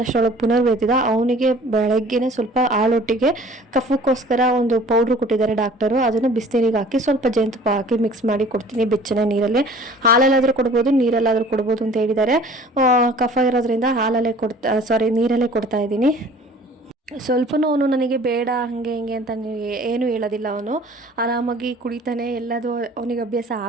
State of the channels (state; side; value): normal; both; correlation 0.49